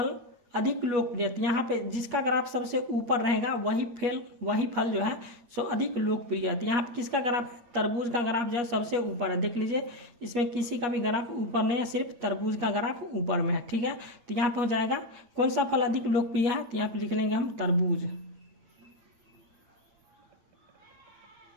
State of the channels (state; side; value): late; left; 8.7 ms